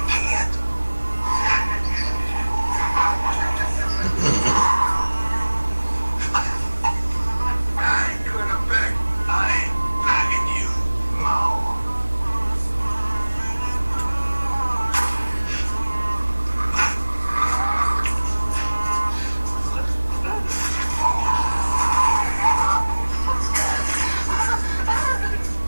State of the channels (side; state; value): both; inverted; correlation -1.00